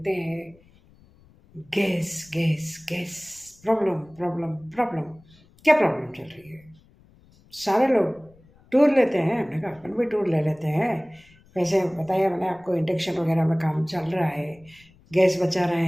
हैं gas gas gas problem problem problem, क्या प्रॉब्लम चल रही है। सारे लोग टूर लेते हैं, हमने कहा अपन भी टूर ले लेते हैं। वैसे बताया मैंने आपको, इंडक्शन वगैरह में काम चल रहा है, गैस बचा रहे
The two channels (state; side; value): noise; left; rumble, 28 dB below the sound